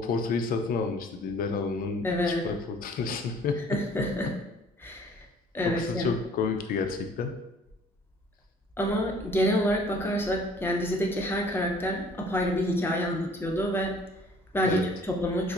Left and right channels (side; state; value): both; normal; correlation 0.54